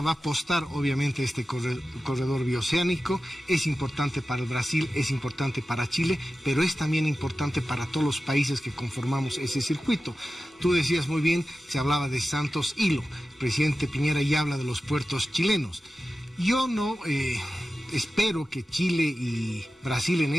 a apostar obviamente a este corredor bioceánico. Es importante para el Brasil, es importante para Chile, pero es también importante para todos los países que conformamos ese circuito. Tú decías muy bien, se hablaba de Santos Hilo. El presidente Piñera ya habla de los puertos chilenos. Yo no espero que Chile y Brasil en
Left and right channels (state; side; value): normal; both; correlation 0.94